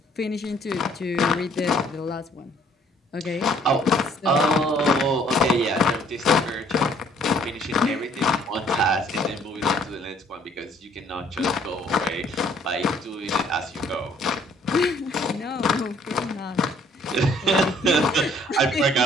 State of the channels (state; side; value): normal; both; correlation 0.61